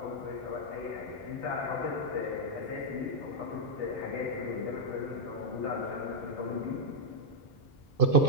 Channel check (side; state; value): both; normal; correlation -0.04